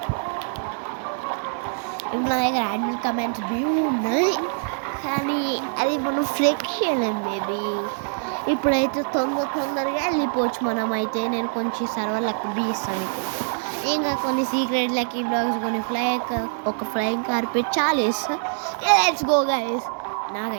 ఇప్పుడు నా దగ్గర యాడ్ కమెంట్స్ వ్యూ ఉన్నాయి. కానీ అది మనం ఫ్లెక్షన్ బేబీ. ఇప్పుడైతే తొందరగా వెళ్ళిపోవచ్చు మనం. అయితే నేను కొంచెం సర్వర్లకు బీస్తాను. ఇంకా కొన్ని సీక్రెట్ లక్కీ బ్లాగ్స్ కొన్ని ఒక flying carpet challenge. Let's go guys.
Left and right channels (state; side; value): silent; left; 58 dB below the other